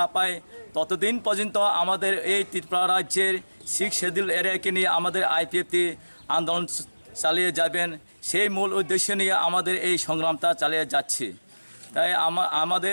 পায় ততদিন পর্যন্ত আমাদের এই ত্রিপুরা রাজ্যের 6 শিডিউল এরিয়াকে নিয়ে আমাদের আইপিএফটি আন্দোলন চালিয়ে যাবেন। সেই মূল উদ্দেশ্য নিয়ে আমাদের এই সংগ্রামটা চালিয়ে যাচ্ছি। তাই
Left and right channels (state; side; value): inverted; both; correlation -1.00